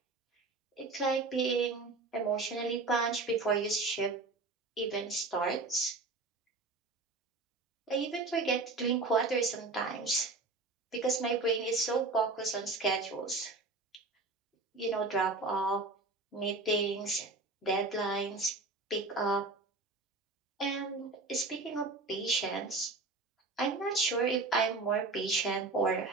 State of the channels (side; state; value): left; quieter; 3.5 dB